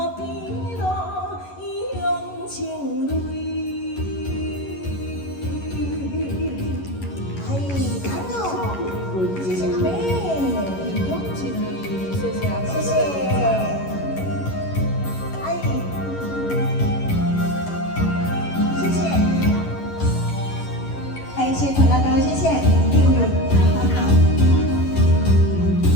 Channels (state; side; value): late; right; 11 ms